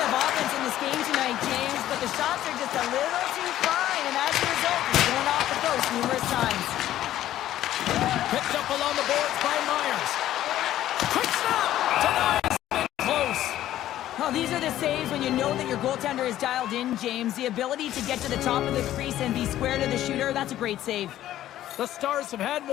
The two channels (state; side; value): quieter; right; 13.0 dB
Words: Picked up along the boards by Myers. Quick snap! Denies. Close. Oh, these are the saves when you know that your goaltender is dialed in, James. The ability to get to the top of the crease and be square to the shooter, that's a great save. The Stars have had